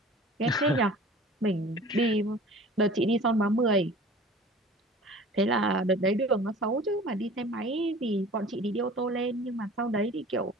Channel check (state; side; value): normal; both; correlation 0.44